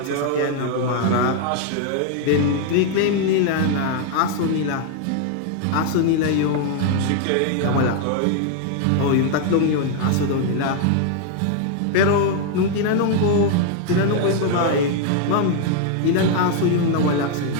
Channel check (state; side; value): different; both; correlation 0.00